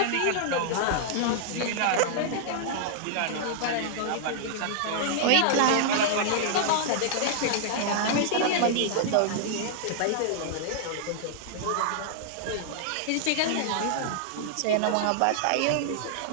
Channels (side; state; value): both; different; correlation -0.01